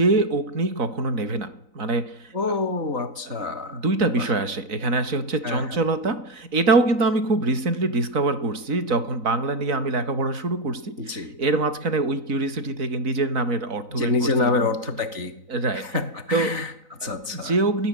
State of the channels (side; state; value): left; late; 4.0 ms